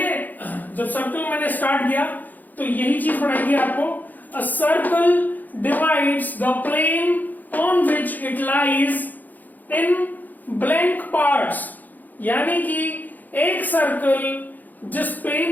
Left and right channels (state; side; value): late; right; 0.084 ms